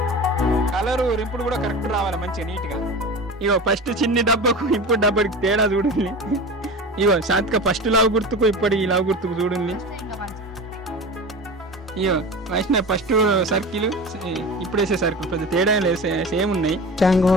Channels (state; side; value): normal; both; correlation 0.31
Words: కలరు రింపుడు కూడా కరెక్ట్ రావాలి మంచిగా నీట్ గా ఇగో ఫస్ట్ చిన్ని డబ్బాకు ఇప్పుడు డబ్బాకి తేడా చూడండి ఇగో శాంతిక ఫస్ట్ లావు గుర్తుకు ఇప్పటి ఈ లావు గుర్తుకు చూడండి ఇగో వైష్ణవ్ ఫస్ట్ సర్కిల్ ఇప్పుడు వేసే సర్కిల్ పెద్ద తేడా లేదు సేమ్ ఉన్నాయి